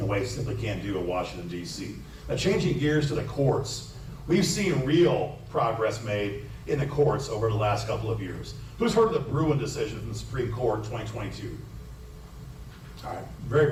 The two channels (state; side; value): identical; both; correlation 1.00